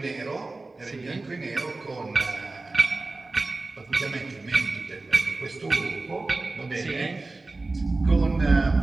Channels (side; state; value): left; quieter; 3.3 dB